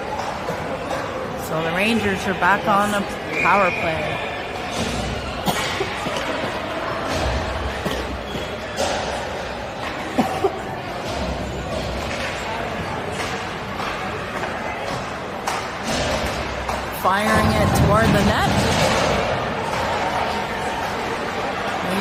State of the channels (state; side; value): identical; both; correlation 1.00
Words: So the Rangers are back on the power play. Firing it toward the net.